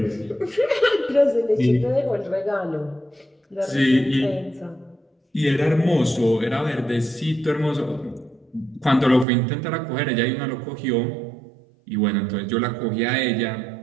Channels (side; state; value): left; drops out; at 9.2 s